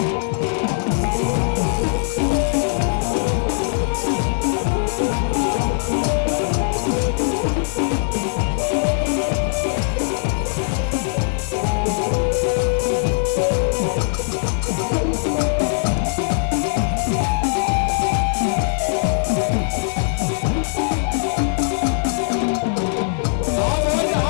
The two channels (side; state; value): right; silent; digital silence